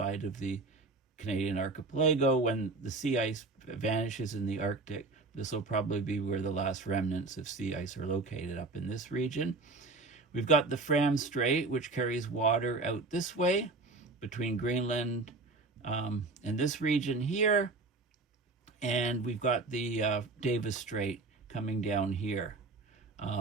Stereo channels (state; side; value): quieter; left; 3.6 dB